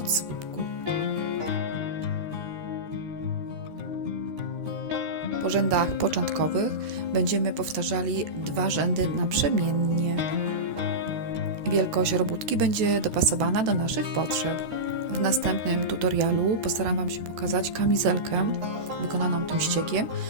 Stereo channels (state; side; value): late; left; 13 ms